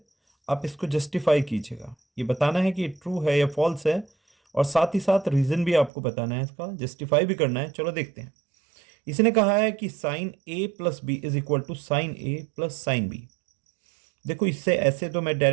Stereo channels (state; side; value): drops out; left; at 5.9 s